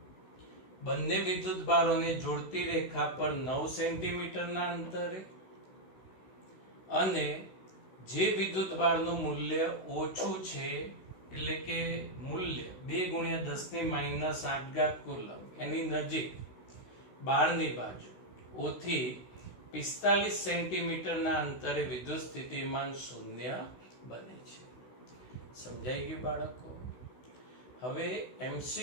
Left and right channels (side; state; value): right; late; 16 ms